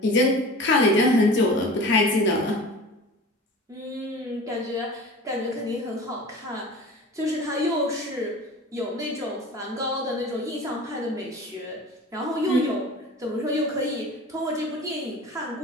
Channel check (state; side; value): normal; both; correlation 0.38